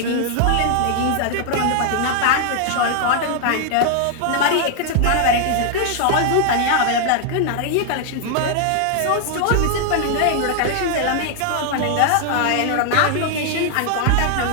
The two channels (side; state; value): both; different; correlation 0.00